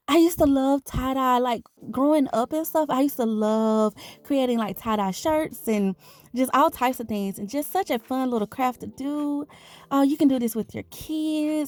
I used to love tie-dye, like growing up and stuff. I used to love creating like tie-dye shirts and just all types of things, and just such a fun little craft to do. Oh, you can do this with your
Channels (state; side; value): identical; both; correlation 1.00